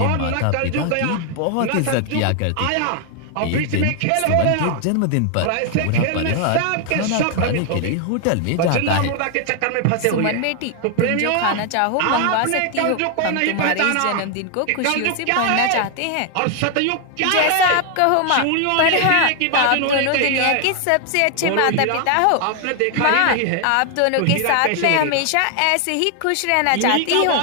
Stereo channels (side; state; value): both; different; correlation 0.00